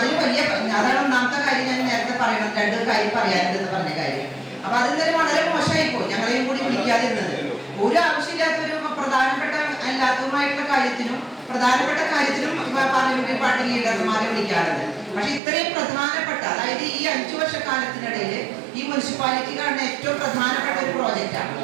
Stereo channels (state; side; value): drops out; left; at 15.4 s